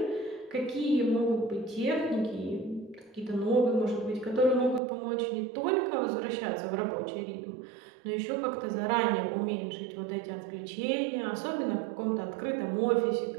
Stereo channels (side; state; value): left; drops out; at 4.8 s